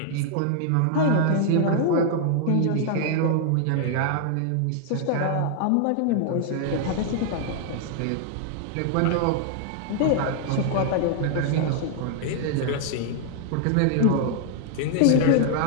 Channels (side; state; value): both; different; correlation 0.00